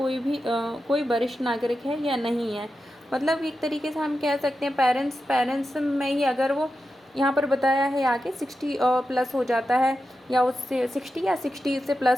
वरिष्ठ नागरिक है या नहीं है। मतलब एक तरीके से हम कह सकते हैं पेरेंट्स में ही अगर वो यहाँ पर बताया है आगे 60 प्लस हो जाता है, या उससे 60 या 60 से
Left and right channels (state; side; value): normal; both; correlation 0.90